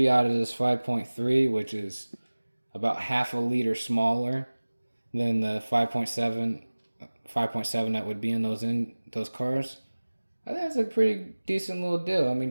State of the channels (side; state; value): both; inverted; correlation -1.00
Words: out of this 5.3, which is about half a liter smaller than the 5.7 that would be in those cars. I think that's a pretty decent little deal. I